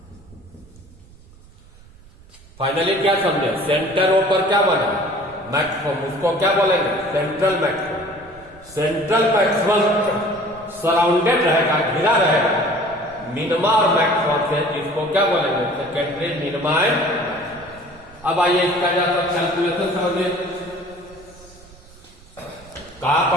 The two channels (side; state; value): right; noise; rumble, 24 dB below the sound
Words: Finally क्या समझे? सेंटर ऊपर क्या बना? मैक्सिमम, उसको क्या बोलेंगे? Central maximum. Central maximum surrounded रहेगा, घिरा रहेगा मिनिमा और मैक्सिमम से, जिसको क्या बोलेंगे सेकेंडरी मिनिमा एंड। अब आइए इसका जरा कैलकुलेशन समझिए, कहां